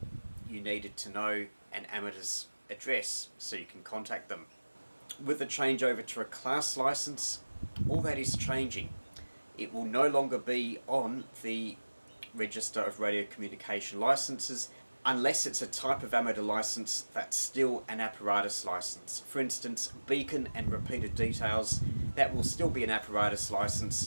you needed to know an amateur's address so you can contact them. With the changeover to a class license, all that is changing. It will no longer be on the Register of Radio Communication Licenses unless it's a type of amateur license that's still an apparatus license. For instance, beacon and repeated details, that will still be an apparatus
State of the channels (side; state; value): both; inverted; correlation -1.00